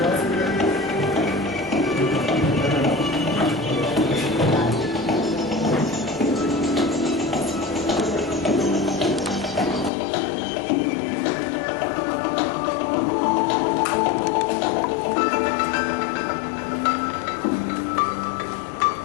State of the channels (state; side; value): drops out; right; at 9.9 s